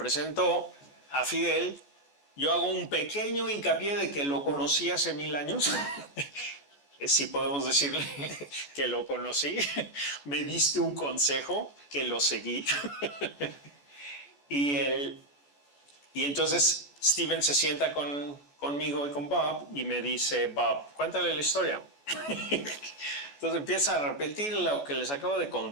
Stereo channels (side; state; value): right; late; 14 ms